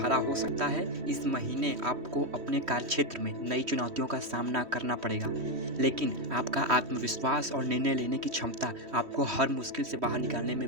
हो सकता है। इस महीने आपको अपने कार्यक्षेत्र में नई चुनौतियों का सामना करना पड़ेगा, लेकिन आपका आत्मविश्वास और निर्णय लेने की क्षमता आपको हर मुश्किल से बाहर निकालने में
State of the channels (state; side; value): late; left; 3.1 ms